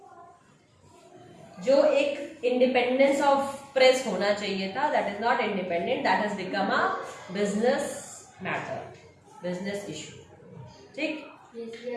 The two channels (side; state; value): both; identical; correlation 1.00